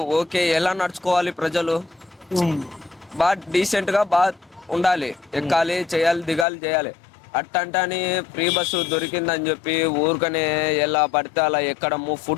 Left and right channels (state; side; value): drops out; right; at 6.5 s